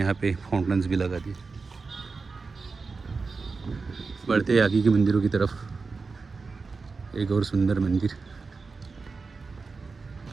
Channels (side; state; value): left; quieter; 4.4 dB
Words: पे फाउंटेन्स भी लगा दिए। बढ़ते आगे के मंदिरों की तरफ, एक और सुंदर मंदिर,